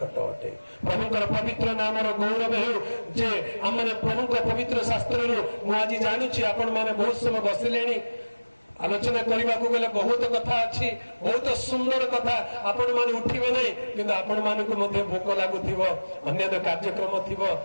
ଅଟେ। ପ୍ରଭୁଙ୍କର ପବିତ୍ର ନାମର ଗୌରବ ହେଉ ଯେ ଆମେ ପ୍ରଭୁଙ୍କ ପବିତ୍ର ଶାସ୍ତ୍ରରୁ ମୁଁ ଆଜି ଜାଣୁଛି ଆପଣ ମାନେ ବହୁତ ସମୟ ବସିଲେଣି। ଆଲୋଚନା କରିବାକୁ ଗଲେ ବହୁତ କଥା ଅଛି, ବହୁତ ସୁନ୍ଦର କଥା, ଆପଣ ମାନେ ଉଠିବେ ନାହିଁ, କିନ୍ତୁ ଆପଣ ମାନଙ୍କୁ ମଧ୍ୟ ଭୋକ ଲାଗୁଥିବ, ଅନ୍ୟାନ୍ୟ କାର୍ଯ୍ୟକ୍ରମ ଥିବ।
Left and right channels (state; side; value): inverted; both; correlation -1.00